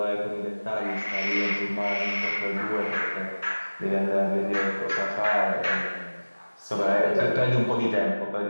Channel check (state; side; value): inverted; both; correlation -1.00